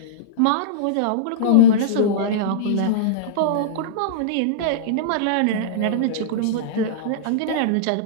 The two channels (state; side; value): different; both; correlation -0.03